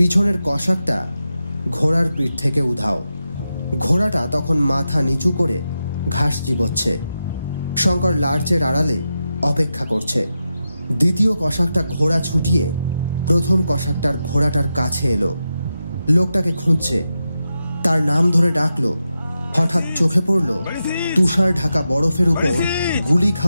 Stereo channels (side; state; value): both; inverted; correlation -0.89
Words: কসাকটা ঘোড়ার পিঠ থেকে উধাও। ঘোড়াটা তখন মাথা নিচু করে ঘাস চিবোচ্ছে। শঙ্কর লার্চের আড়ালে অপেক্ষা করছে। দ্বিতীয় কসাকটা ঘোড়া ছুটিয়ে প্রথম কসাকটার ঘোড়াটার কাছে এলো। লোকটাকে খুঁজছে, তার নাম ধরে ডাকলো। হঠাৎ চোখে পড়ল তুষার ঢাকা বরফের উপর গুলি